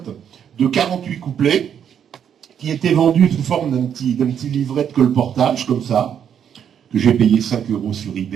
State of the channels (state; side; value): quieter; left; 8.6 dB